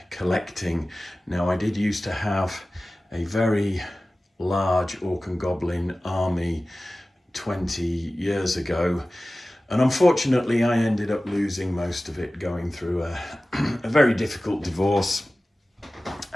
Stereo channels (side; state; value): both; normal; correlation 0.96